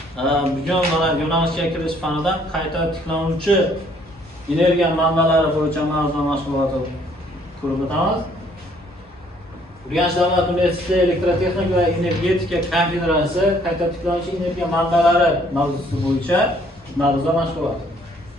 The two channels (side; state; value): both; normal; correlation 0.63